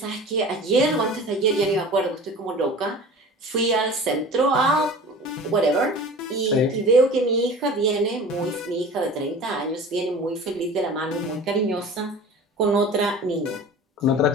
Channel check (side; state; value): both; normal; correlation 0.39